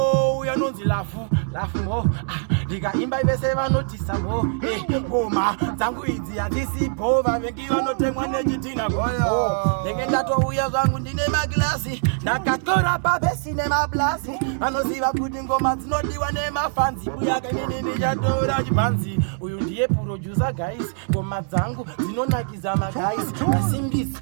uya nonzi lafu mo, ndikaimba vese vanotisa mo, ngoma dzangu idzi hadzisipo, vavengi vanotemwa nechitina goyo, ndenge ndatouya zvangu ndine maglasi, ndakatora pabesi nemablasi, vanoziva kuti ngoma dzinodiwa nemafanzi, Buyaka inini ndichatora chibhanzi, uyu ndiye producer guys, ngoma dzangu dzinonakiza magays, asimbisi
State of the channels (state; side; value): silent; left; digital silence